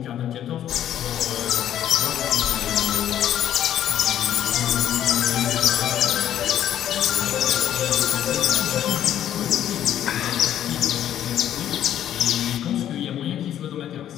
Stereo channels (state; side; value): quieter; right; 11.0 dB